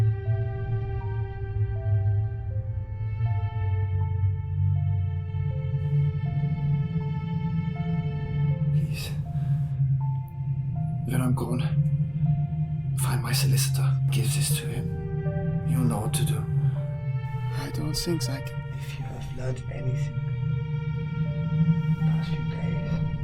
When I'm gone, find my solicitor, give this to him. You'll know what to do. I don't think I can. If you have learned anything the past few days,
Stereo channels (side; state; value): both; identical; correlation 1.00